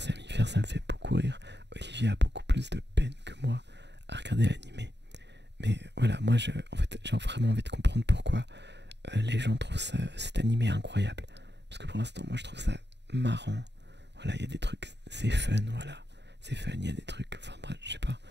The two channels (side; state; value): left; late; 0.50 ms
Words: à m'y faire, ça me fait beaucoup rire. Olivier a beaucoup plus de peine que moi à regarder l'animé. Mais voilà, moi en fait j'ai vraiment envie de comprendre pourquoi les gens trouvent cet animé incroyable. Parce que pour l'instant moi je trouve ça marrant. Voilà, il y a des trucs, c'est fun, voilà. C'est fun, il y a des trucs, enfin bref, je sais pas.